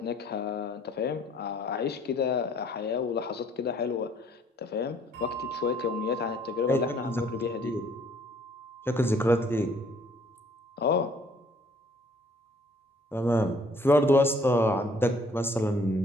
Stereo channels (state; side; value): normal; both; correlation 0.60